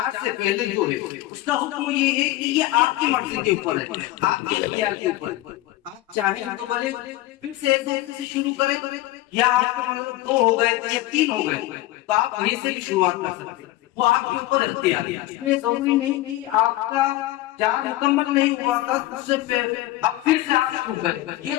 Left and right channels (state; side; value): quieter; right; 16.6 dB